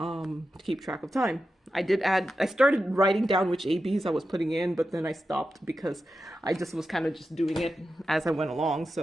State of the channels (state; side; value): normal; both; correlation 0.91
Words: keep track of time. I started writing down which ABs I was putting in, but then I stopped because I just was kind of just doing it as I went along.